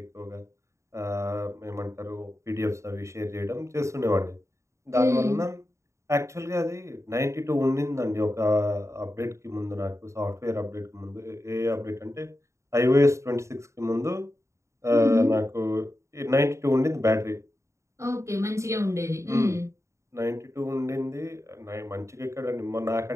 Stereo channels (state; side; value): late; left; 0.14 ms